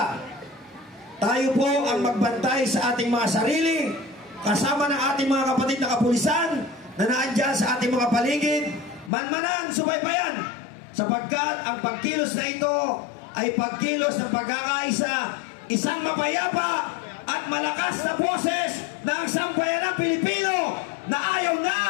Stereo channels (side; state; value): right; drops out; at 9.1 s